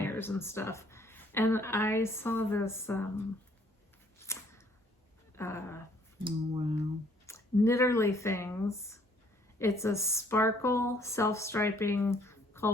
and stuff. And I saw this Oh, wow. Knitterly Things. It's a sparkle self-striping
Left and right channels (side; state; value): both; normal; correlation 0.62